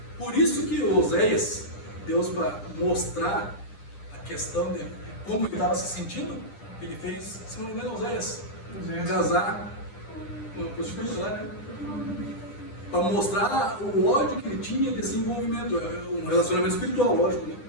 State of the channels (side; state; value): right; late; 10 ms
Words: Por isso que Oséias, Deus para mostrar a questão de como ele estava se sentindo, ele fez, se não me engano, Oséias, casar com uma prostituta lá, né? Para mostrar o ódio que ele tinha desse envolvimento. É um relacionamento espiritual, lógico, né?